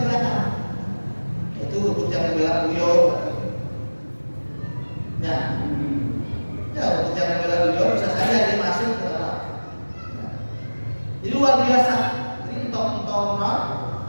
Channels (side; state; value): both; inverted; correlation -1.00